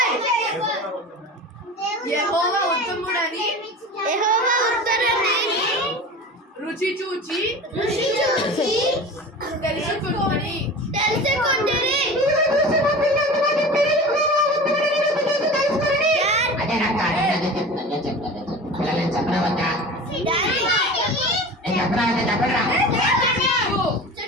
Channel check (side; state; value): both; normal; correlation 0.35